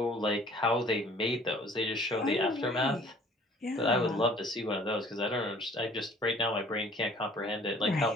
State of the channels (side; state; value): both; normal; correlation 0.53